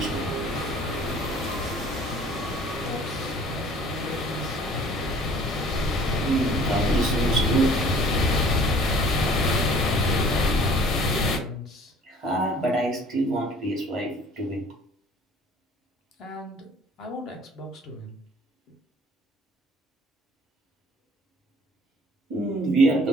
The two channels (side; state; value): both; normal; correlation 0.52